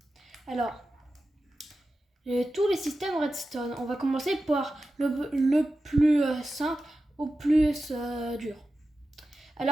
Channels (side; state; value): both; normal; correlation 0.93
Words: Alors, tous les systèmes Redstone, on va commencer par le plus simple au plus dur.